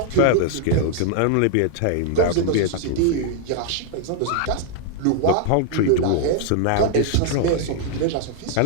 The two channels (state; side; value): different; both; correlation 0.00